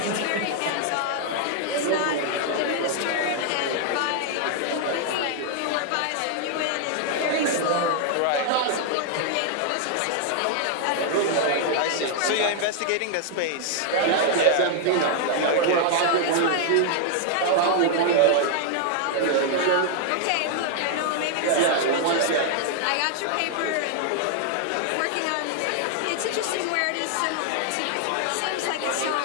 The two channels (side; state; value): both; different; correlation 0.00